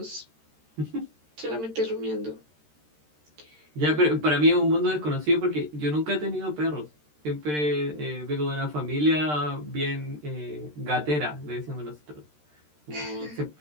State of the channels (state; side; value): late; left; 13 ms